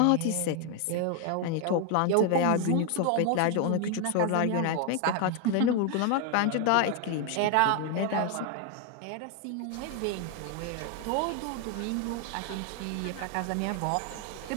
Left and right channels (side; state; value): both; different; correlation 0.01